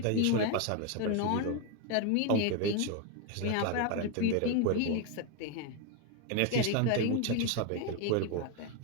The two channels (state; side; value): different; both; correlation 0.02